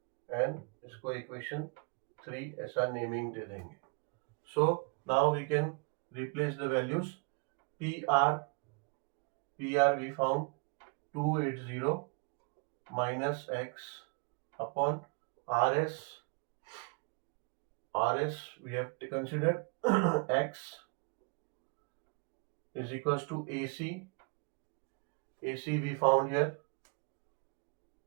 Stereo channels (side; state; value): left; quieter; 36.6 dB